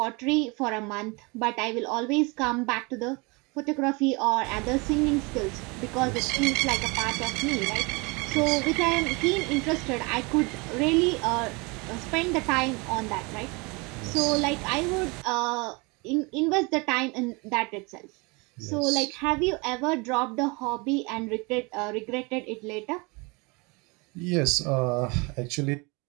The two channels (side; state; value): left; quieter; 28.0 dB